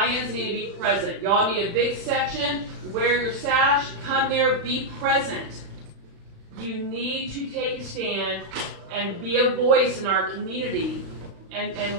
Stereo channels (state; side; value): late; left; 36 ms